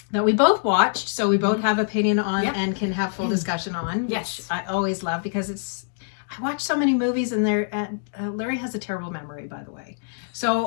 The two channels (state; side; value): silent; right; digital silence